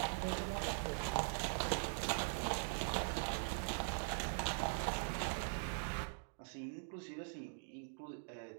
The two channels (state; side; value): silent; left; digital silence